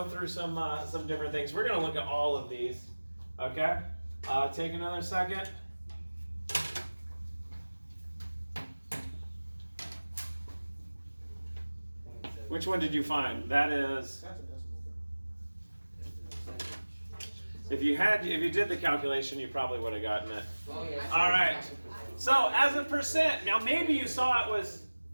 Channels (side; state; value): both; inverted; correlation -1.00